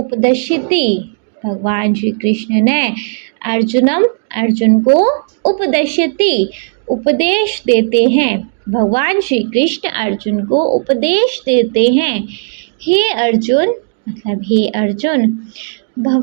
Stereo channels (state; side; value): silent; left; digital silence